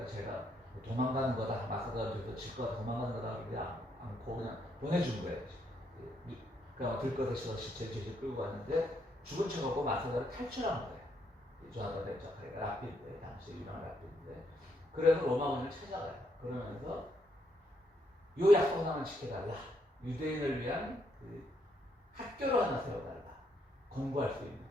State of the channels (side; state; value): both; normal; correlation 0.75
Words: 제가 도망가는 거다, 마사다 전투에서 질 거다, 도망가는 거다 그러지 않고 그냥 보내준 거예요. 그러니까 들것에서 시체를 끌고 갔는데 죽은 척하고 마사다를 탈출한 거예요. 조나단 벤 자카이가 랍비인데, 당시 유명한 랍비인데, 그래서 로마군을 찾아가요. 그러면서 요 약속 하나만 지켜달라. 유대인을 위한 그 학교를 하나 세워달라. 공부할 수 있는.